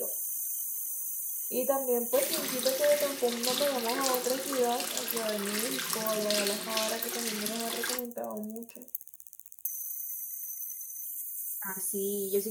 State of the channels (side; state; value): both; identical; correlation 1.00